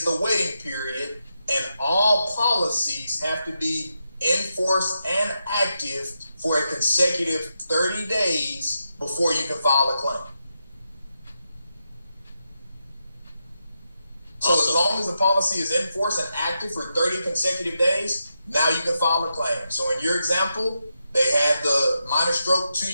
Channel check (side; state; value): both; inverted; correlation -0.86